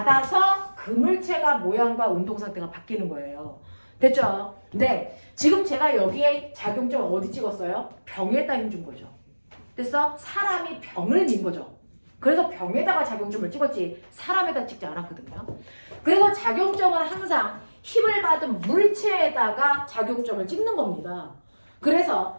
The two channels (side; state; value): both; inverted; correlation -1.00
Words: 그 물체가 모양과 운동 상태가 바뀌는 거예요. 됐죠? 네. 지금 제가 여기에 작용점 어디 찍었어요? 병에다 힘 준 거죠. 됐어? 사람이 병을 민 거죠. 그래서 병에다가 작용점을 찍었지 사람에다 찍지 않았거든요. 그래서 작용점은 항상 힘을 받은 물체에다가 작용점을 찍는 겁니다. 그래서